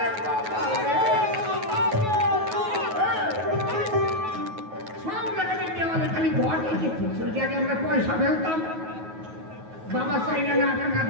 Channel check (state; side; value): late; left; 9.3 ms